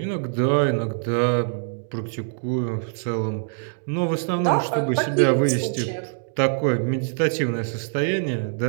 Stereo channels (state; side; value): silent; left; digital silence